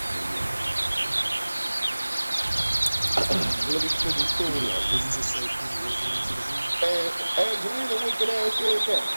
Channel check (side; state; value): both; inverted; correlation -1.00